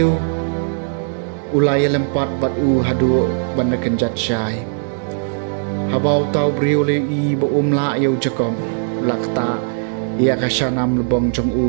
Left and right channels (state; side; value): silent; left; 64 dB below the other